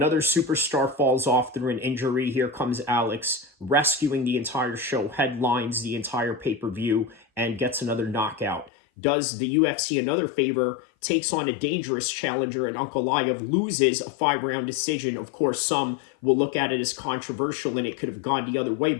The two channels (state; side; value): drops out; right; at 8.7 s